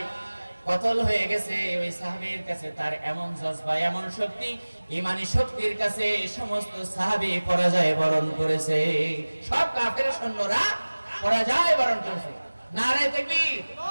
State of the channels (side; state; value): both; inverted; correlation -1.00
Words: কতল হয়ে গেছে। ওই সাহাবীর কাছে তার এমন জজবা, এমন শক্তি, ঈমানি শক্তির কাছে সমস্ত সাহাবী পরাজয় বরণ করেছে। সব কাফের সৈন্যরা পরাজয় বরণ করেছে। নারে তাকবীর,